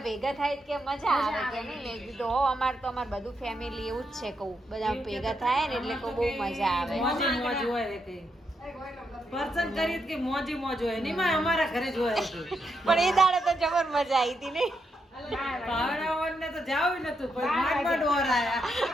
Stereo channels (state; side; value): normal; both; correlation 0.81